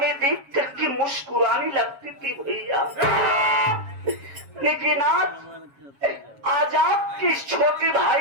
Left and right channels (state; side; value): late; left; 7.3 ms